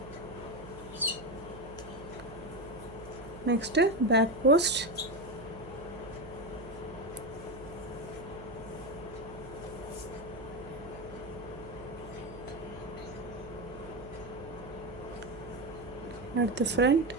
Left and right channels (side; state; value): right; noise; hum, 14 dB below the sound